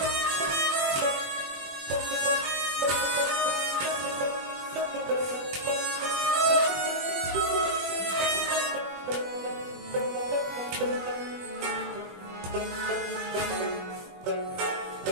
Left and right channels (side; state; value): left; late; 21 ms